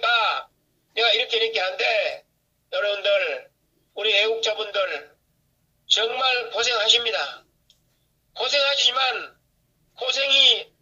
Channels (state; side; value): identical; both; correlation 1.00